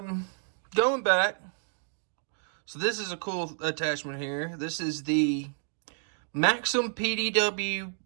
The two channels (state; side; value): silent; left; digital silence